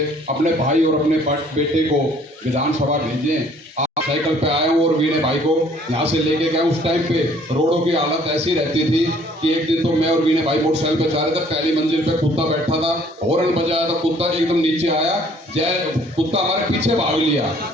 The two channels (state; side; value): normal; both; correlation 0.58